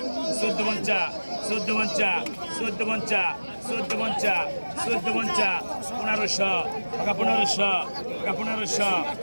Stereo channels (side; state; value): both; inverted; correlation -1.00